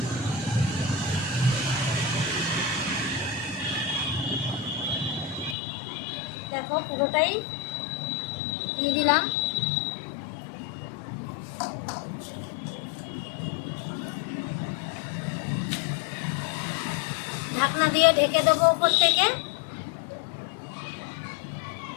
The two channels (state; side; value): drops out; right; at 5.6 s